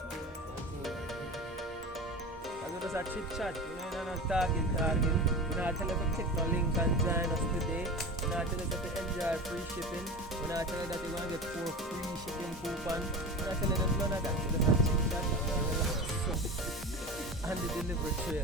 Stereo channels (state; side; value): normal; both; correlation 0.29